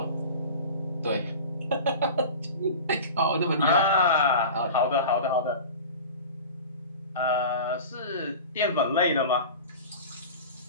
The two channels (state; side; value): inverted; both; correlation -0.34